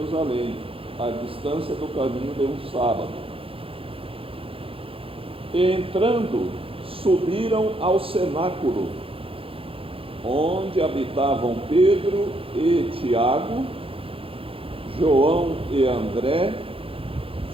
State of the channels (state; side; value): late; left; 0.27 ms